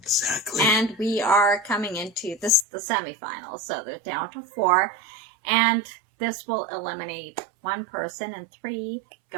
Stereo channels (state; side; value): drops out; left; at 2.7 s